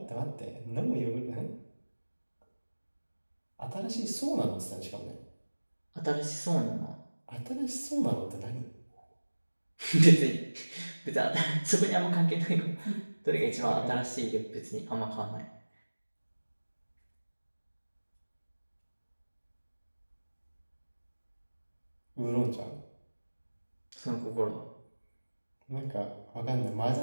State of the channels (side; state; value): both; inverted; correlation -1.00